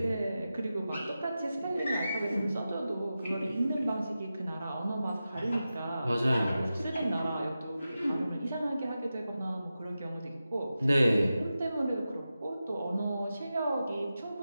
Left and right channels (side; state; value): both; inverted; correlation -0.92